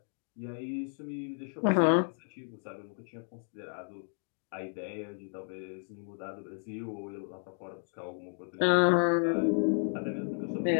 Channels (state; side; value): silent; right; 56 dB below the other